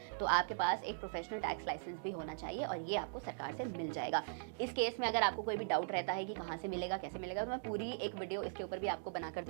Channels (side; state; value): left; silent; digital silence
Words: तो आपके पास एक प्रोफेशनल टैक्स लाइसेंस भी होना चाहिए और ये आपको सरकार से मिल जाएगा। इस केस में अगर आपको कोई भी डाउट रहता है कि कहाँ से मिलेगा, कैसे मिलेगा, तो मैं पूरी एक वीडियो इसके ऊपर भी आपको बनाकर